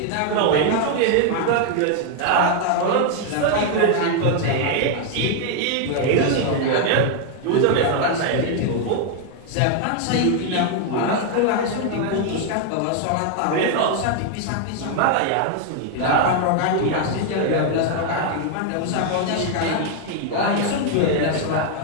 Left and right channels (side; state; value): both; different; correlation 0.00